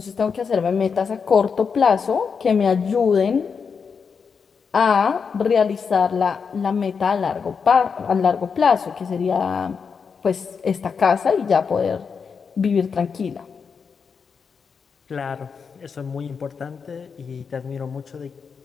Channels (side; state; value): right; quieter; 5.9 dB